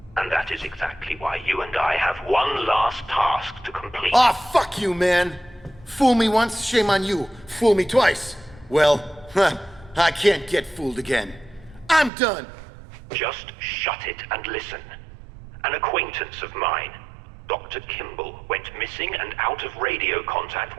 And that is exactly why you and I have one last task to complete. Aw, fuck you, man! Fool me once, shame on you. Fool me twice. Well, I can't get fooled again. I'm done! Just shut it and listen. An acquaintance of mine, Dr. Kimball, went missing and out of radio contact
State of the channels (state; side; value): drops out; left; at 12.1 s